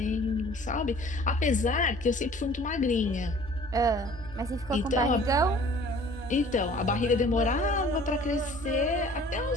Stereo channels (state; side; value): normal; both; correlation 0.50